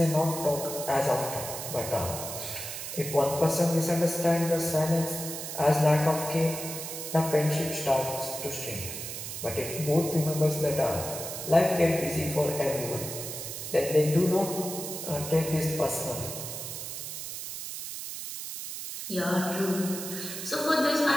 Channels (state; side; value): noise; right; hiss, 7 dB below the sound